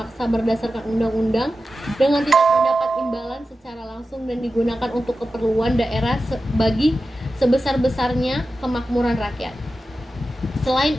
berdasarkan undang-undang dengan tidak mendapat imbalan secara langsung dan digunakan untuk keperluan daerah bagi sebesar-besarnya kemakmuran rakyat. Selain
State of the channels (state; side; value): normal; both; correlation 0.93